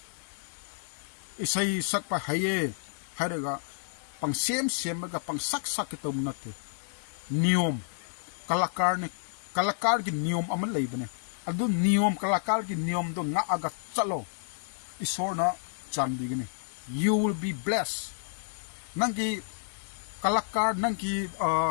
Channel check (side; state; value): right; silent; digital silence